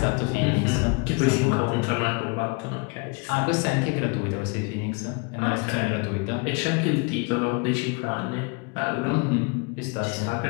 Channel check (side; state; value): right; quieter; 30.7 dB